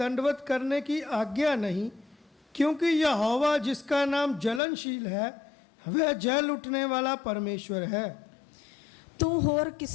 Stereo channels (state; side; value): drops out; right; at 4.6 s